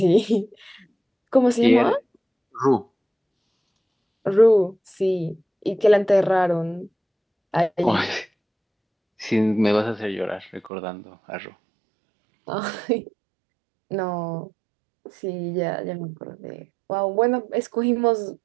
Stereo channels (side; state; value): left; drops out; at 10.7 s